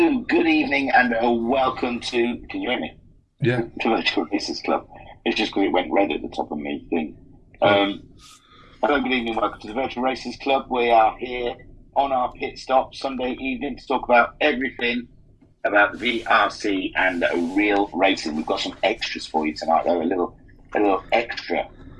good evening, and welcome to. Can you hear me? Yeah. To Virtual Races Club. It's just because it went red at the top of me thing. Hello, good evening, welcome to the Virtual Races Club. We are here on our pit stop Sunday evening to talk about everything about the VRC and real racing. We've got some extras for you tonight, though. A little extra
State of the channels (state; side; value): identical; both; correlation 1.00